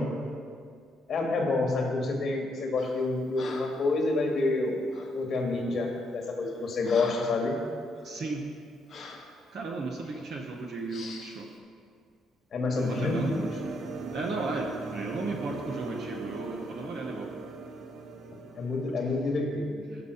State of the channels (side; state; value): both; normal; correlation 0.75